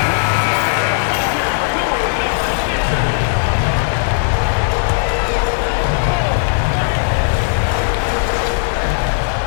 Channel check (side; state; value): right; silent; digital silence